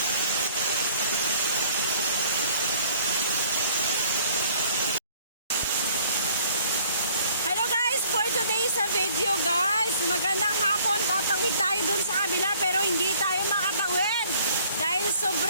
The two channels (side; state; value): both; inverted; correlation -0.57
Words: Hello guys, for today's video guys, magandang hapon. Tatawid tayo dun sa kabila pero hindi tayo makatawid dahil